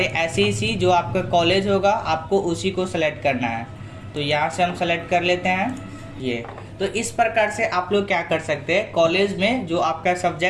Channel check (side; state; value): both; identical; correlation 1.00